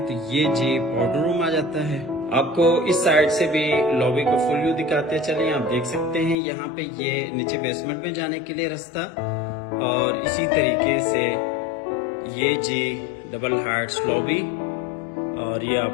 तो ये जी पाउडर रूम आ जाता है। आपको इस साइड से भी लॉबी को फुल व्यू दिखाते चलिए। आप देख सकते हैं यहाँ पे ये नीचे बेसमेंट में जाने के लिए रास्ता और इसी तरीके से ये जी डबल हाइट्स लॉबी और ये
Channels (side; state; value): right; drops out; at 6.4 s